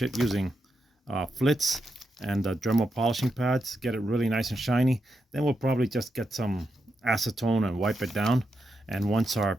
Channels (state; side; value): normal; both; correlation 0.85